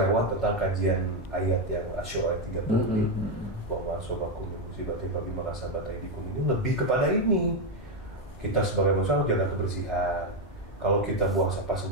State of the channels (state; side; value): normal; both; correlation 0.06